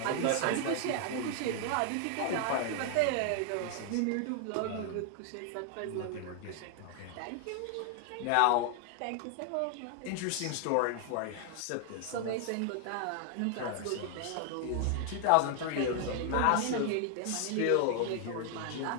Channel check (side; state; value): both; different; correlation 0.00